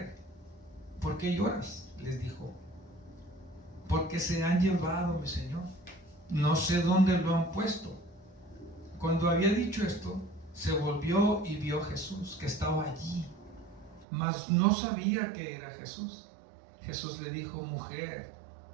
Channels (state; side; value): drops out; left; at 14.1 s